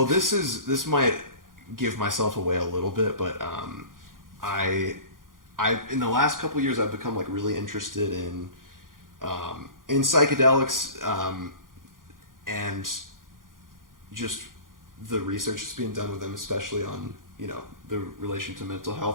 this might give myself away a little bit, but I in the last couple years I've become like really interested in psychedelics, and just the research that's being done with them, especially on, you know, the relation to mental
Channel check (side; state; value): left; late; 0.90 ms